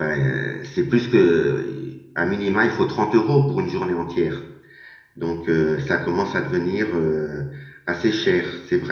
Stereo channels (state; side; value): identical; both; correlation 1.00